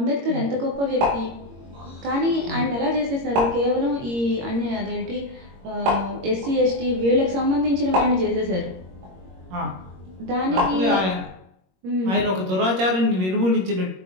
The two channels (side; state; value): left; late; 21 ms